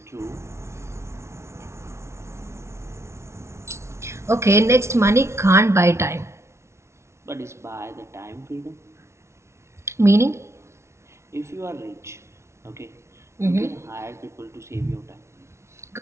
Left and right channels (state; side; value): late; left; 0.13 ms